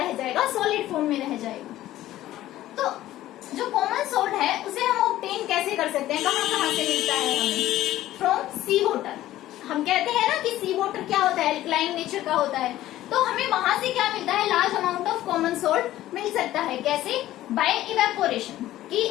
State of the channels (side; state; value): right; quieter; 14.4 dB